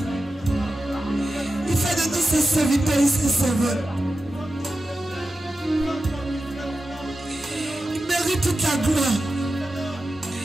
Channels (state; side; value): normal; both; correlation 0.92